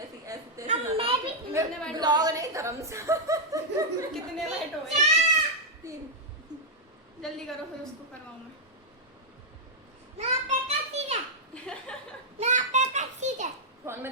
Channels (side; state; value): both; normal; correlation -0.05